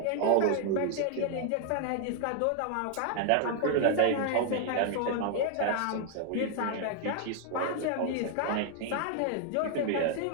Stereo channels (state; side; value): different; both; correlation 0.00